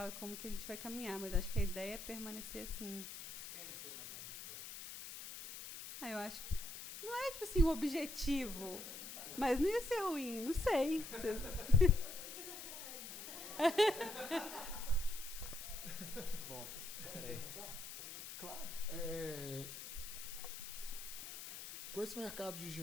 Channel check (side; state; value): left; noise; hiss, 10 dB below the sound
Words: e como que a gente vai caminhar. Mas acho que a ideia é permanecer assim. Vocês querem ser uma grande editora? Eu acho que não é, tipo assim, o objetivo. Mas não ia ser ruim, não sei. Bom, peraí. Claro. Com esse mercado